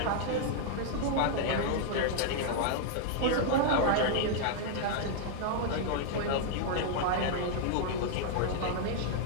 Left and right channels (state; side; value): different; both; correlation 0.00